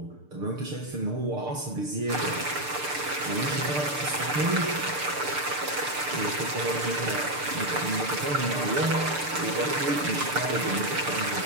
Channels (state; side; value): late; left; 6.7 ms